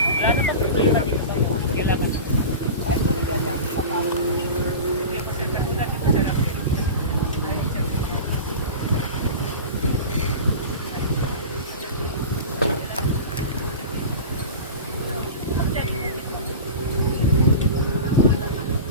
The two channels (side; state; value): both; inverted; correlation -0.30